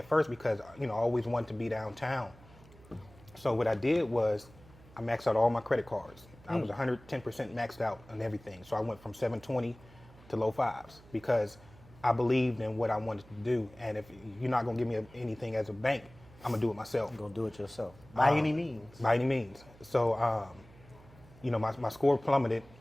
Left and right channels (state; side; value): noise; right; hum, 23 dB below the sound